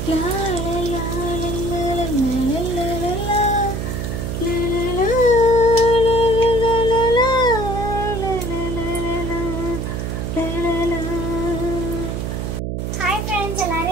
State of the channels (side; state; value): right; noise; hum, 3 dB below the sound